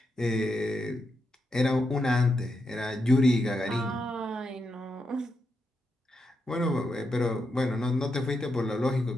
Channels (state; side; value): normal; both; correlation 0.84